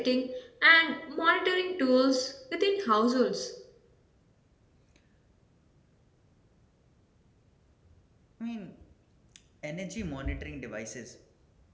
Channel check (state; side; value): identical; both; correlation 1.00